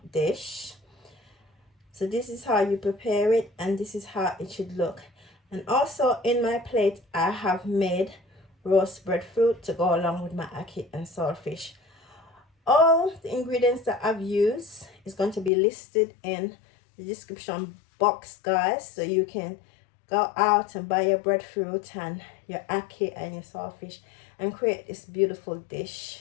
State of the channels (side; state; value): right; drops out; at 15.5 s